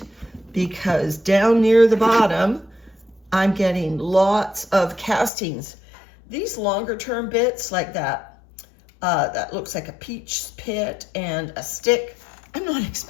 because down near the bottom, I'm getting lots of castings. These longer term bits like that, that looks like a peach pit and a stick, I'm not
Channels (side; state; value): right; drops out; at 5.3 s